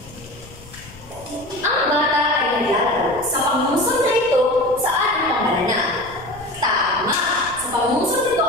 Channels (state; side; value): noise; left; rumble, 21 dB below the sound